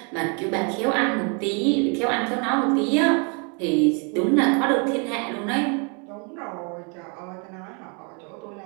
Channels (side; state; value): left; quieter; 36.0 dB